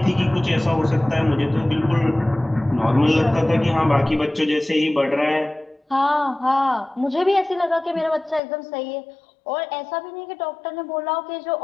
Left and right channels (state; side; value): drops out; right; at 8.4 s